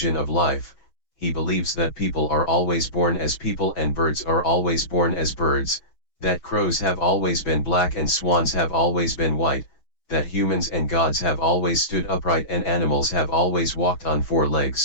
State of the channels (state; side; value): late; right; 6.2 ms